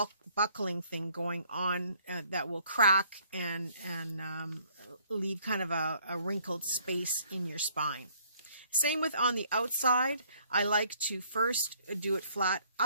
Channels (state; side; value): inverted; both; correlation -0.63